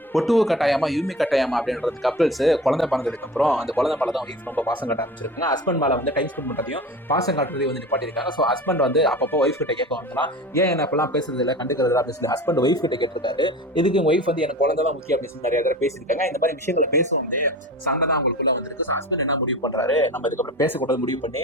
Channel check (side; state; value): both; normal; correlation 0.34